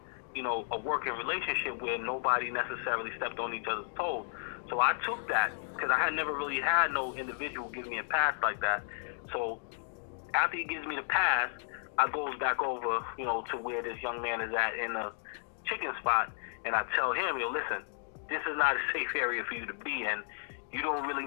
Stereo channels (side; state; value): right; silent; digital silence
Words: a working relationship where nobody necessarily stepped on each other's toes. So I took that because I had never really had no individual give me a pass like that. So after he gives me the pass, I goes back over, to where this young man is at in the chicken spot, and I tell him, listen, this is not a safe area for you to be in. You don't really